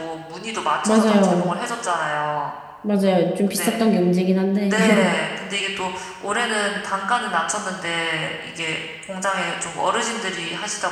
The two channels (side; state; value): both; identical; correlation 1.00